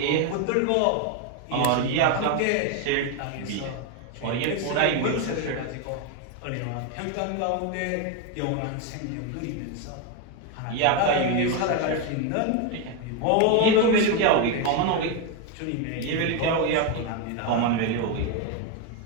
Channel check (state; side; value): different; both; correlation 0.01